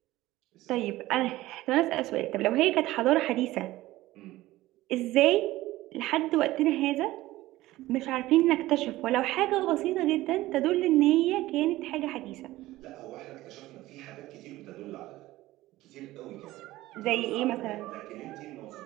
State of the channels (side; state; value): left; quieter; 17.0 dB